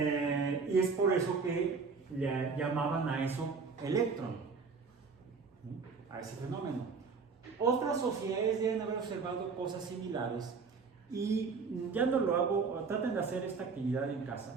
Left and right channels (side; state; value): left; quieter; 5.0 dB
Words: es por eso que le llamaban a eso electrón, a ese fenómeno. Otras sociedades deben haber observado cosas similares y ya no lo hago, traten de hacer esta actividad en